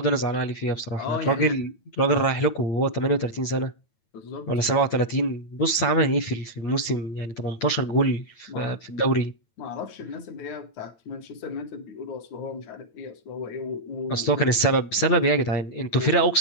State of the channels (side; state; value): right; late; 9.0 ms